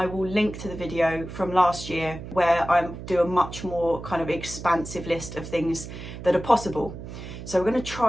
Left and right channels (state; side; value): noise; right; hum, 11 dB below the sound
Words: will link to the video from last year where I do a much more kind of expansive list of things that are possible. So we're going to